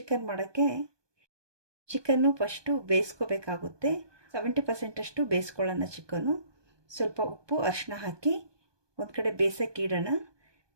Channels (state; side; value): late; left; 1.2 ms